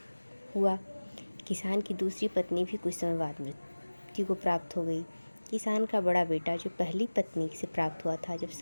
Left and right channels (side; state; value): both; inverted; correlation -1.00